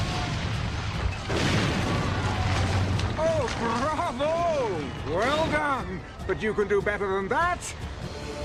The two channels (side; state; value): both; identical; correlation 1.00